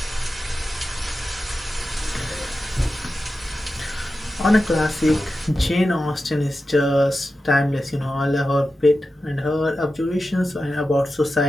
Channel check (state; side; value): normal; both; correlation 0.92